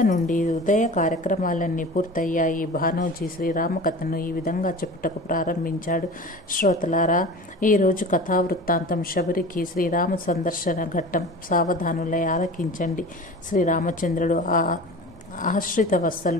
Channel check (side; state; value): both; normal; correlation 0.36